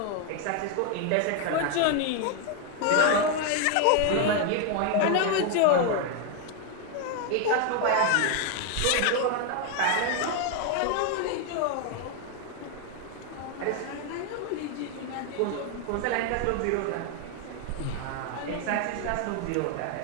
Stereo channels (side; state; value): both; different; correlation 0.01